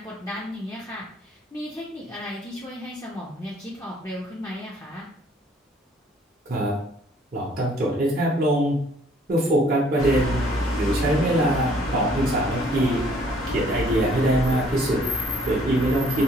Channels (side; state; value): both; normal; correlation 0.60